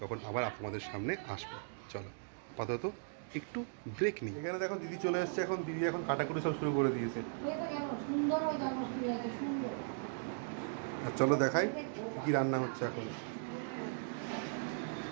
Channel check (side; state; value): left; silent; digital silence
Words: আবার আপনাদের সামনে আসবে। চলো আপাতত একটু ব্রেক নিই। এখানে দেখো দিদি চলে এসছে। এখন দিদি এখন কাটাকুটি সব শুরু করে দিয়েছে। আর চলো দেখাই কি রান্না হচ্ছে এখন।